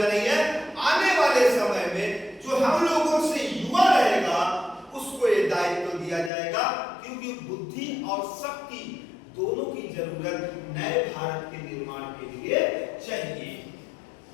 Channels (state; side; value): drops out; right; at 6.3 s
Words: नहीं है। आने वाले समय में जो हम लोगों से युवा रहेगा उसको ये दायित्व दिया जाएगा, क्योंकि बुद्धि और शक्ति दोनों की जरूरत नए भारत के निर्माण के लिए चाहिए।